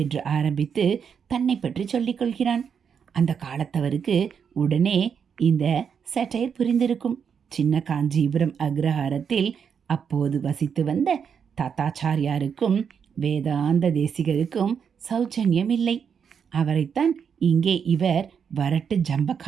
என்று ஆரம்பித்து தன்னை பற்றி சொல்லிக் கொள்கிறான். அந்த காலத்தவருக்கு உடனே இந்த சட்டையர் புரிந்திருக்கும். சின்ன காஞ்சிபுரம் அக்ரஹாரத்தில் அப்போது வசித்து வந்த தாத்தாச்சாரியாருக்கும் வேதாந்த தேசிகருக்கும் சௌஜன்யம் இல்லை. அவரைத்தான் இங்கே இவர் வரட்டு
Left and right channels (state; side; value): quieter; left; 7.0 dB